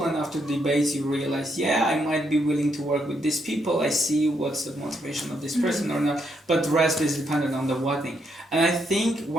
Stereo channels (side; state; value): both; normal; correlation 0.77